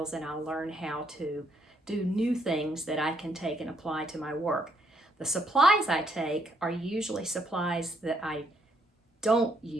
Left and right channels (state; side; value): normal; both; correlation 0.72